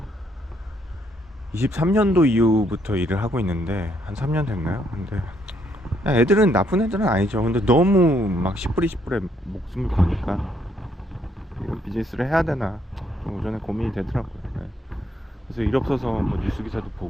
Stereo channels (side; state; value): both; normal; correlation 0.72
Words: 23년도 이후부터 일을 하고 있는데 한 3년 됐나요? 근데 애들은 나쁜 애들은 아니죠. 근데 너무 막 10불이 10불에 목숨을 거니까 이런 비즈니스를 해야 되나 좀 오전에 고민이 되더라고요. 네. 그래서 일 없어서 뭐 뉴스 기사도